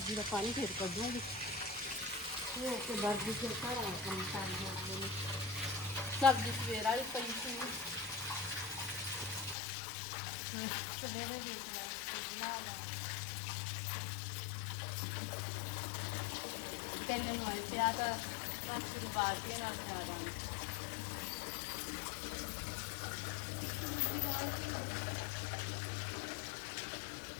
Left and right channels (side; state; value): right; drops out; at 9.6 s